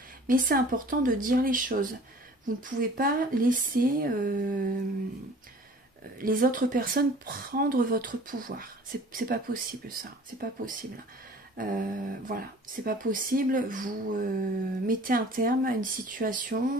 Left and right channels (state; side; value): normal; both; correlation 0.47